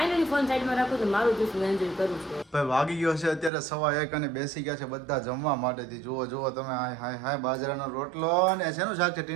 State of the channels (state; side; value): drops out; left; at 3.5 s